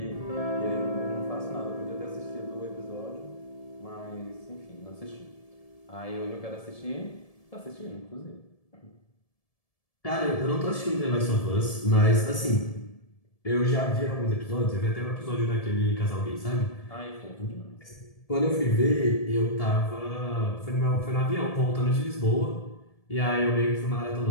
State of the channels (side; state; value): right; late; 1.7 ms